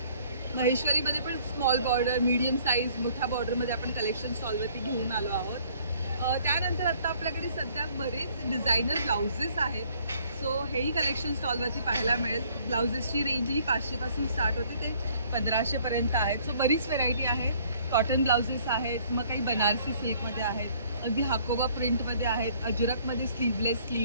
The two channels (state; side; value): inverted; both; correlation -0.59